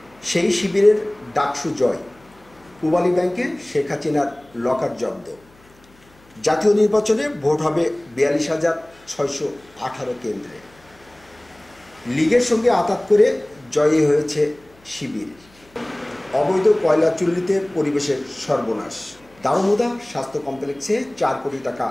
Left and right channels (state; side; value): noise; left; hum, 29 dB below the sound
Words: সেই শিবিরের ডাকসু জয়, পূবালী ব্যাংকে শেখ হাসিনার লকার জব্দ। জাতীয় নির্বাচনে ভোট হবে 42,618 কেন্দ্রে। লীগের সঙ্গে আঁতাত করে জয়ী হয়েছে শিবির। অবৈধ কয়লা চুল্লিতে পরিবেশের সর্বনাশ। দারুমুদা স্বাস্থ্য কমপ্লেক্সে 4 কোটি টাকা